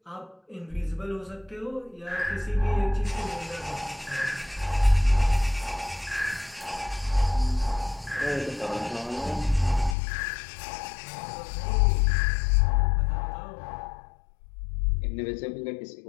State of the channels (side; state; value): right; drops out; at 10.0 s